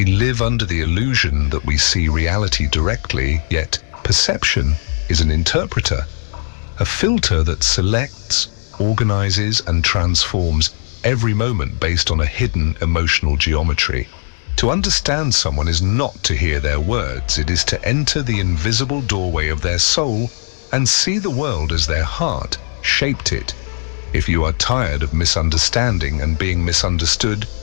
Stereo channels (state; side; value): silent; right; 68 dB below the other